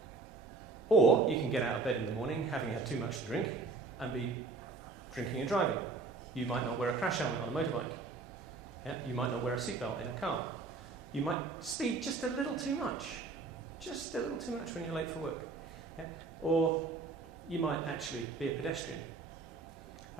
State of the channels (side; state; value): left; quieter; 4.1 dB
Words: Or you can get out of bed in the morning having had too much to drink and be drinking and driving. You might not wear a crash helmet on a motorbike. Yeah? You might not wear a seatbelt in a car. You might speed just a little too much when you're late for work. Yeah? Or you might actually be a pedestrian.